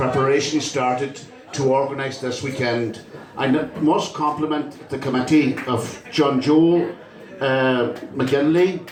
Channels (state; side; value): identical; both; correlation 1.00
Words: started to organise this weekend. I must compliment the committee of John Joe McGinley,